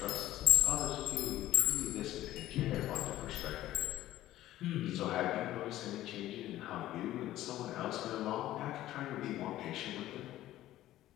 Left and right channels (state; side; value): quieter; right; 14.4 dB